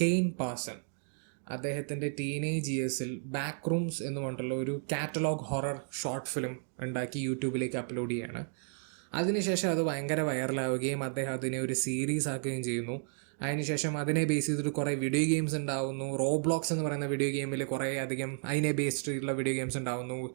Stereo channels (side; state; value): left; silent; 56 dB below the other